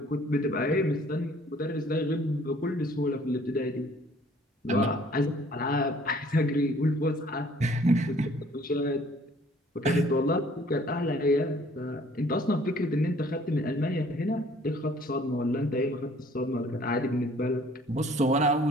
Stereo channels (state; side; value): normal; both; correlation 0.57